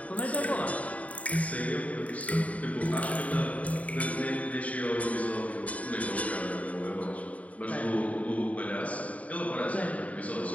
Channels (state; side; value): late; right; 0.069 ms